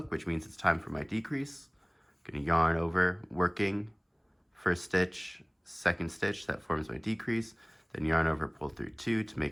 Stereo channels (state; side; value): identical; both; correlation 1.00